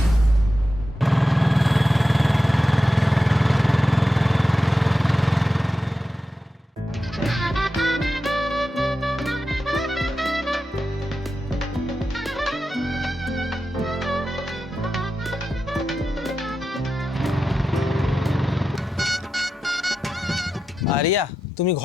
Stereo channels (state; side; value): normal; both; correlation 0.90